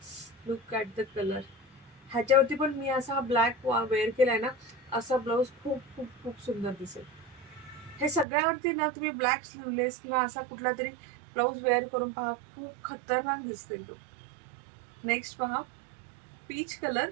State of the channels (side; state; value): left; drops out; at 8.2 s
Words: Look at the colour. ह्याच्यावरती पण मी असा ब्लॅक वेअर केलाय ना, असा ब्लाऊज खूप खूप खूप सुंदर दिसेल. हे सगळ्यावरती ना तुम्ही ब्लॅक स्लीवलेस किंवा असा कुठला तरी ब्लाऊज वेअर करून पहा, खूप खतरनाक दिसते तो. नेक्स्ट पहा, पीच कलर.